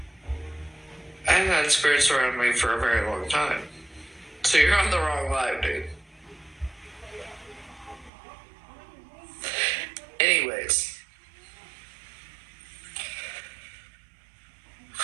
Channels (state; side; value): drops out; left; at 8.1 s